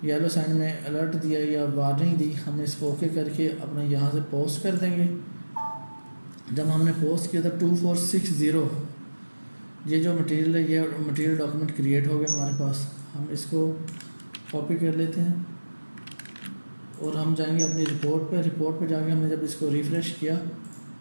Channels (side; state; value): both; inverted; correlation -1.00